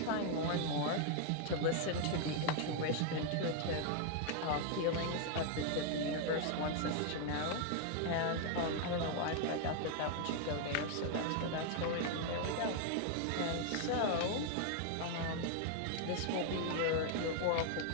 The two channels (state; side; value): different; both; correlation 0.00